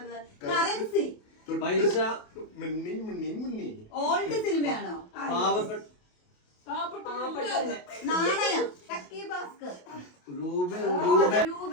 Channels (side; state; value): right; late; 28 ms